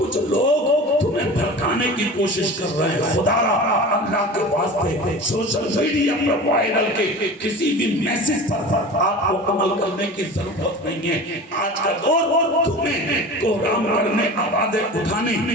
لوگ تمہیں بھڑکانے کی کوشش کر رہے ہیں. خدا را اللہ کے واسطے سوشل میڈیا پر وائرل کے کسی بھی میسج پر آپ کو عمل کرنے کی ضرورت نہیں ہے. آج کا دور میں کوہرام کرنے آوازیں اٹھانے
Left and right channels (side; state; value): both; normal; correlation 0.35